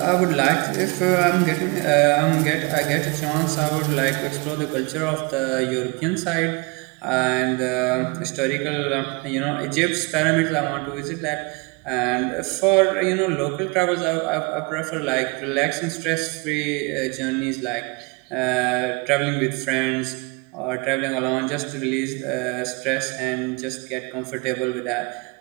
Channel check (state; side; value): quieter; left; 28.3 dB